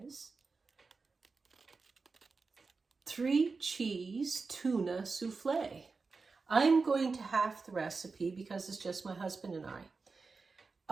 3-cheese tuna soufflé. I'm going to half the recipe because it's just my husband and I.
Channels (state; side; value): quieter; left; 4.4 dB